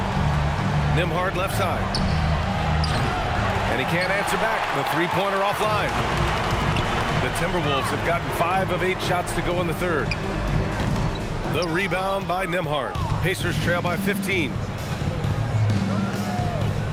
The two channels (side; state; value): both; identical; correlation 1.00